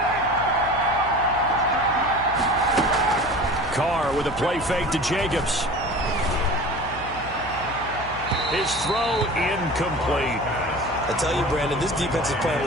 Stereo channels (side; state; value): left; noise; hum, 14 dB below the sound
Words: Carr with a play fake to Jacobs. His throw incomplete. I tell you, Brandon, this defense is playing